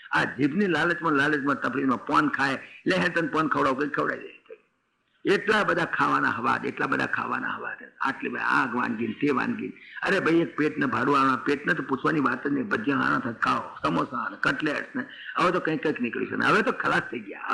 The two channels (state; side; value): identical; both; correlation 1.00